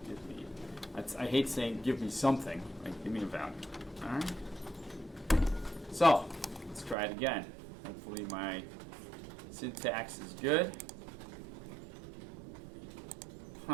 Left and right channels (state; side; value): drops out; left; at 7.0 s